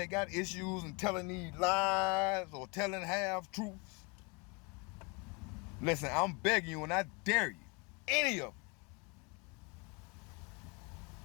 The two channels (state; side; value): quieter; right; 29.4 dB